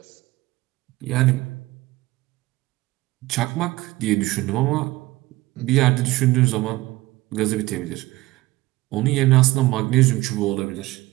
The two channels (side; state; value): left; quieter; 18.9 dB